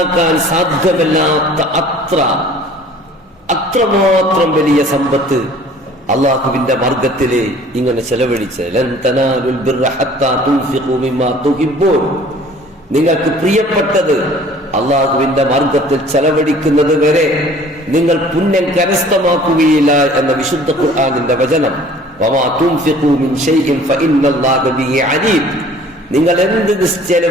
സാധ്യമല്ലാത്ത അത്രമാത്രം വലിയ സമ്പത്ത് അള്ളാഹുവിന്റെ മാർഗത്തില് ഇങ്ങനെ ചെലവഴിച്ച് നിങ്ങൾക്ക് പ്രിയപ്പെട്ടത് അള്ളാഹുവിന്റെ മാർഗത്തിൽ ചെലവഴിക്കുന്നത് വരെ നിങ്ങൾ പുണ്യം കരസ്ഥമാക്കുകയില്ല എന്ന വിശുദ്ധ ഖുർആനിന്റെ വചനം. നിങ്ങൾ എന്ത്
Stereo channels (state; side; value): normal; both; correlation 0.51